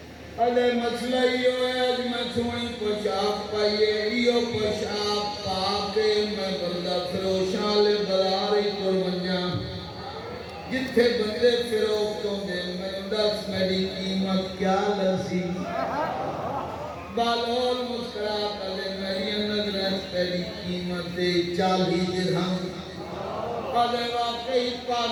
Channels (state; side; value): identical; both; correlation 1.00